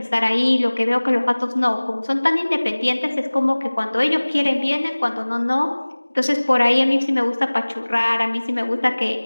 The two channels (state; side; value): inverted; both; correlation -1.00